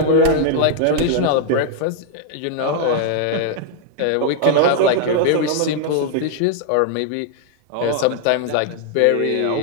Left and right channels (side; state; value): both; different; correlation -0.01